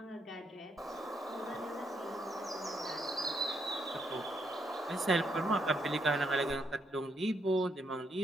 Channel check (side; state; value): both; normal; correlation 0.76